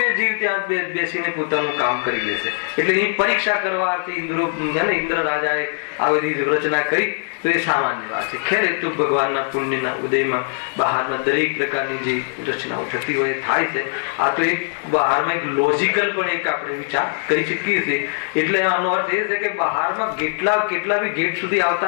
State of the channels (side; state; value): right; silent; digital silence